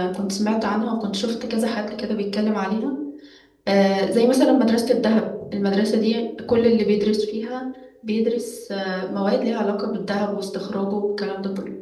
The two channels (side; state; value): both; identical; correlation 1.00